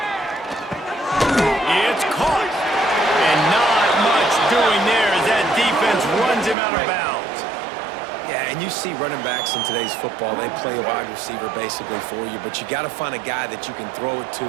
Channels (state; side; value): drops out; left; at 6.6 s